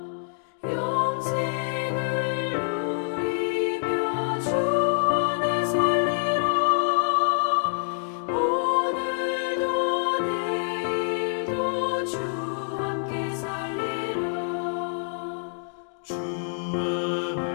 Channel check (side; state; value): right; silent; digital silence